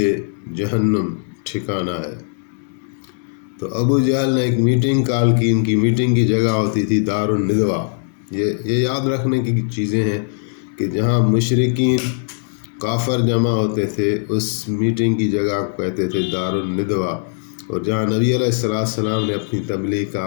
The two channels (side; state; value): right; silent; digital silence